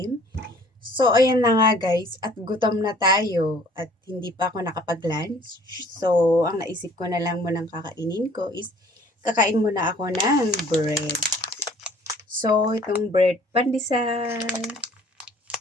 So ayan na nga guys, at gutom na tayo at hindi pa ako nakapag-lunch. So ang naisip ko na lang munang kakainin ko is kakain muna ako ng bread. So itong bread pandesal.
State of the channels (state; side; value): normal; both; correlation 0.55